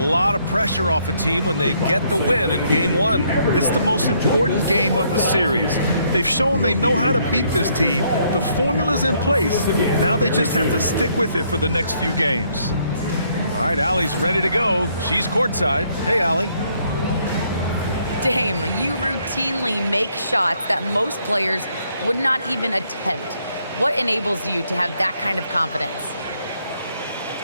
of pressure off a team when they get the win in game one. It's the most important game of the series. They've shown they know how to beat this team. The formula's in place. Now they just have to stick with it for the next few games. All right, Allie's ready to go. She's courtside. Hey, Allie. Dame, you routinely make shots that most players would not even attempt. What enables you to have that kind of confidence?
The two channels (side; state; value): both; inverted; correlation -0.70